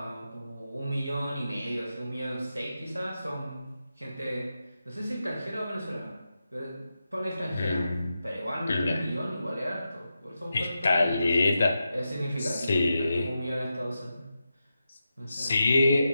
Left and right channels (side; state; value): both; inverted; correlation -0.89